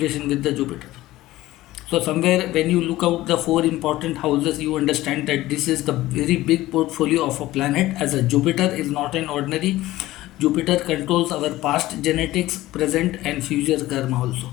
with the Jupiter. So somewhere when you look out the 4 important houses, you understand that this is the very big portfolio of a planet, as a Jupiter is not an ordinary. Jupiter controls our past genetics, present and future karma also.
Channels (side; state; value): right; quieter; 16.6 dB